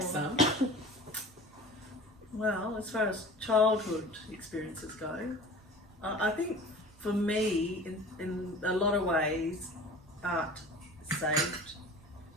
some. Well, as far as childhood experiences go, I think for me, in a lot of ways, art saved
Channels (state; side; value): normal; both; correlation 0.40